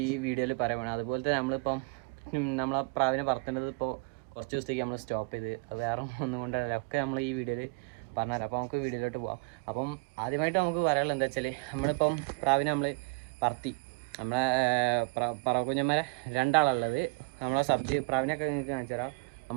വീഡിയോയിൽ പറയുന്നത്. അതുപോലെ തന്നെ നമ്മളിപ്പം നമ്മളെ പ്രാവിനെ പറത്തേണ്ടത് ഇപ്പോൾ കുറച്ച് ദിവസത്തേക്ക് നമ്മൾ സ്റ്റോപ്പ് ചെയ്ത്, അത് വേറെ ഒന്നും കൊണ്ടല്ല, ഒക്കെ നമ്മൾ ഈ വീഡിയോയിൽ പറഞ്ഞുതരാം. അപ്പോൾ നമുക്ക് വീഡിയോയിലോട്ട് പോകാം. അപ്പം ആദ്യമായിട്ട് നമുക്ക് പറയാനുള്ളത് എന്താ വെച്ചാൽ, നമ്മളിപ്പം പ്രാവിനെ നമ്മൾ പറത്തി, നമ്മളെ പറവക്കുഞ്ഞന്മാരെ രണ്ടാളുള്ളത്. നമ്മളെ സബ്ജി പ്രാവിനൊക്കെ നിങ്ങൾക്ക് കാണിച്ചു തരാം.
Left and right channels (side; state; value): left; quieter; 31.3 dB